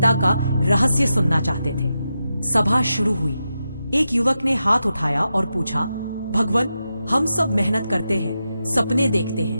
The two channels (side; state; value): both; inverted; correlation -0.88